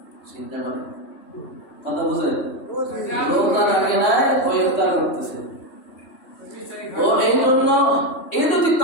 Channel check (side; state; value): right; late; 3.1 ms